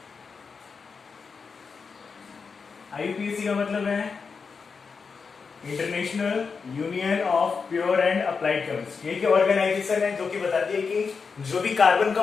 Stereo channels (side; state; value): right; quieter; 5.3 dB